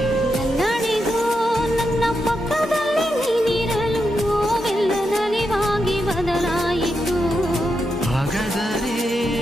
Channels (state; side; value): normal; both; correlation 0.85